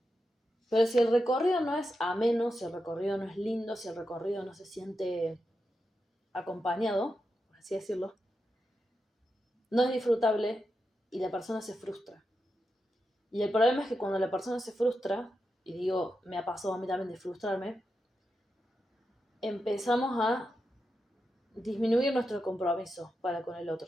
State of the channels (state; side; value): normal; both; correlation 0.88